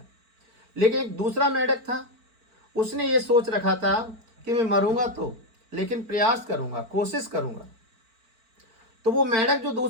लेकिन एक दूसरा मेंढक था, उसने ये सोच रखा था कि मैं मरूंगा तो, लेकिन प्रयास करूंगा, कोशिश करूंगा। तो वो मेंढक जो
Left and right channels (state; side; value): late; left; 4.5 ms